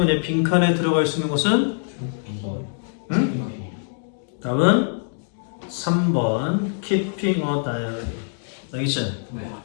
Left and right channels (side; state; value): right; silent; digital silence